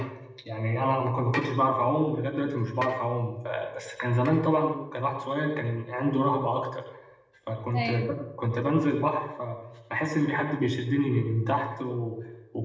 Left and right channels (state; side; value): identical; both; correlation 1.00